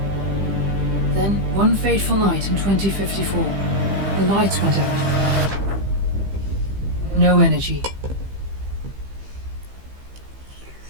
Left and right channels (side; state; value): left; late; 15 ms